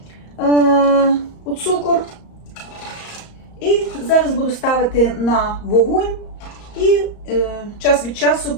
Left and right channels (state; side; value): late; right; 34 ms